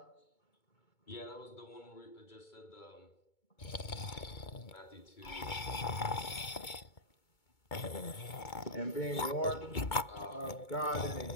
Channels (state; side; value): late; right; 2.2 ms